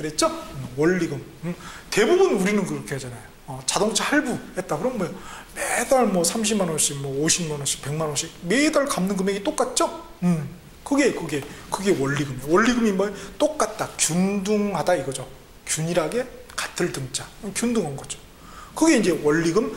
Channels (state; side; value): identical; both; correlation 1.00